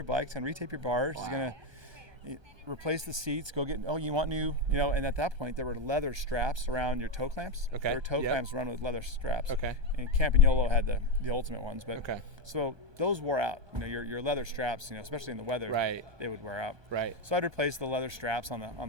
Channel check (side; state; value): left; late; 1.3 ms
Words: bikes and retape your bars. Wow. replace the seats, go get, you want new, and at that point there were leather straps around your toe clamps. Okay. There were toe clamps run with leather straps. Okay. And Campagnolo had the ultimate ones, but Okay. so those wore out. Your leather straps, especially in the weather, Right. they would wear out. Right. So I'd replace the leather straps on